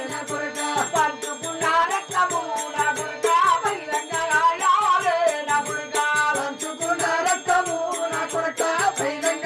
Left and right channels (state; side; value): identical; both; correlation 1.00